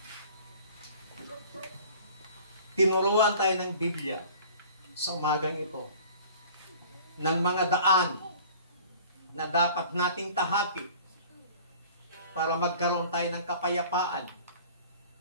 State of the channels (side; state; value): both; inverted; correlation -0.47